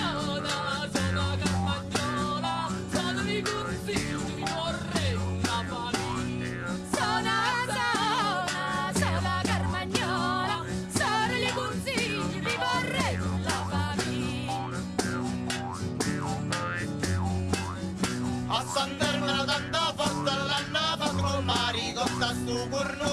Carmagnola, sono di consiglio, mi vorrei una famiglia. Sono Carmagnola, sono di consiglio, mi vorrei una famiglia. A Sant'Ermina tanta fatta l'hanno fatto col marito, sta sto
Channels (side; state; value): both; identical; correlation 1.00